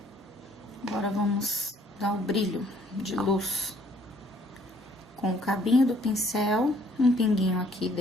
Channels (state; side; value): normal; both; correlation 0.62